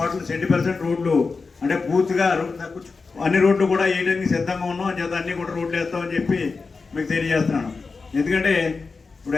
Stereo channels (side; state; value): right; quieter; 4.4 dB